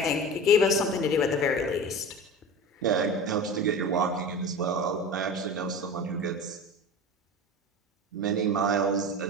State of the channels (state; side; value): normal; both; correlation 0.32